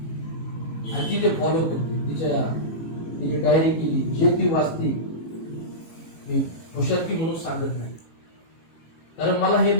आणि ती ते फॉलो करते. तिने डायरी केली, जे ती वाचते. मी हुशारकी म्हणून सांगत नाही, कारण मला हे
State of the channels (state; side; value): late; right; 18 ms